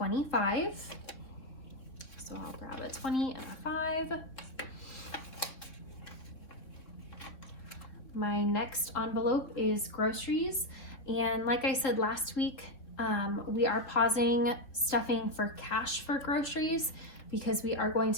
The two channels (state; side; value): late; right; 3.4 ms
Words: So I'll grab a 20 and a 5. My next envelope is groceries. And like I said last week, we are pausing stuffing for cash for groceries because we are going